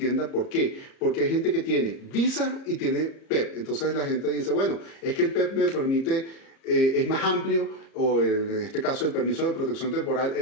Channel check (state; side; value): late; right; 30 ms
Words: ¿Por qué? Porque hay gente que tiene visa y tiene PEP. Entonces la gente dice, bueno, es que el PEP me permite, es más amplio, o en este caso el permiso de protección temporal